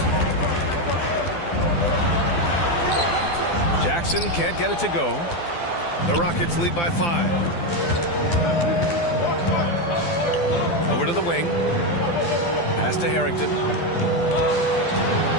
Jackson can't get it to go. The Rockets lead by 5. Over to the wing. Pass to Harrington.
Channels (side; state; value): right; late; 12 ms